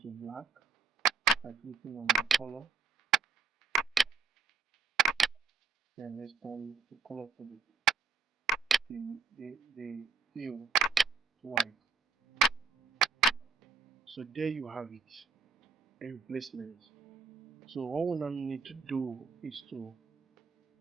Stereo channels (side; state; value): left; quieter; 4.9 dB